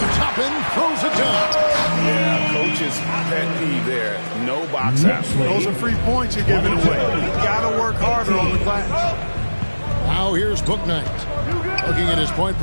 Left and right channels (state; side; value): inverted; both; correlation -1.00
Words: Toppin throws it down. Yeah, coach's pet peeve there. No box out. Those are free points you're giving away. You got to work harder on the glass. Now here's Bouknight. Looking at his point